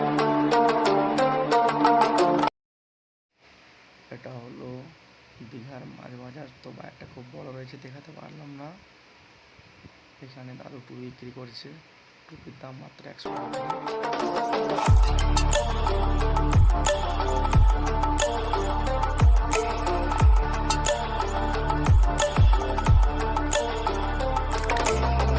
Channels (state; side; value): identical; both; correlation 1.00